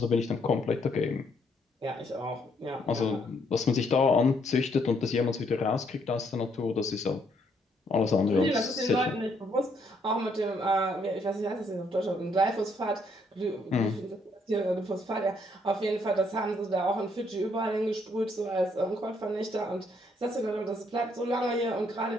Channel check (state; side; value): normal; both; correlation 0.71